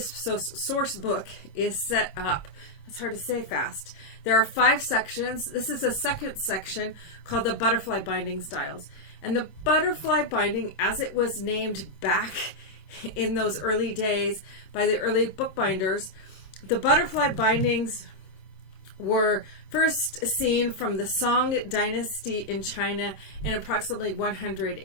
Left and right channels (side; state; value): right; late; 26 ms